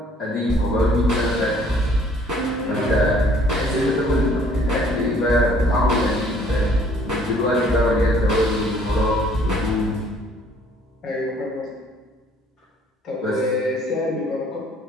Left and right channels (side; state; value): both; normal; correlation 0.59